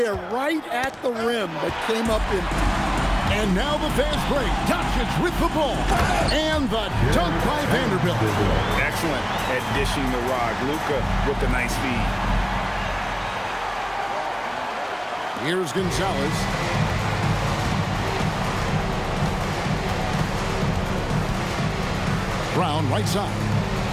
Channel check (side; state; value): both; identical; correlation 1.00